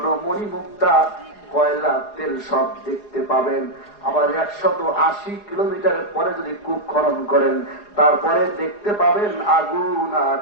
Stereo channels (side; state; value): right; late; 4.8 ms